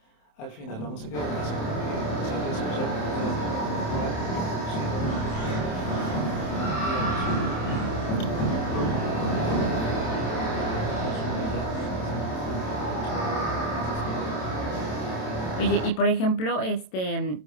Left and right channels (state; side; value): late; right; 27 ms